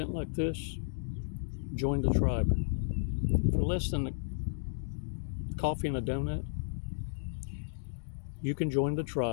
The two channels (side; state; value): right; silent; digital silence